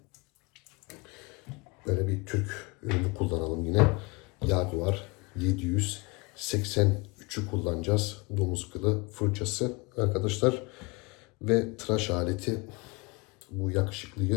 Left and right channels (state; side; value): quieter; right; 26.9 dB